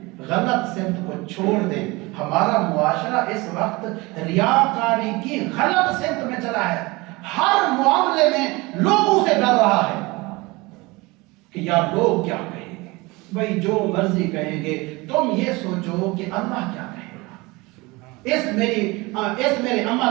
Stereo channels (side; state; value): left; quieter; 23.5 dB